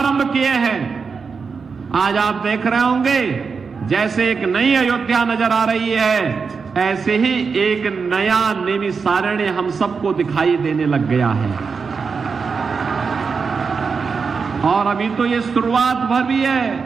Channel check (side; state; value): left; quieter; 5.3 dB